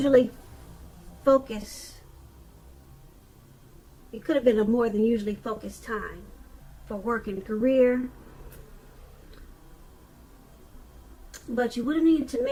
focused time for work and career. But you would have needed to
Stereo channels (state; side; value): identical; both; correlation 1.00